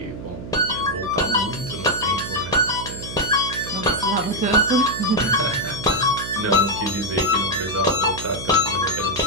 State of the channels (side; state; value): right; noise; hum, 11 dB below the sound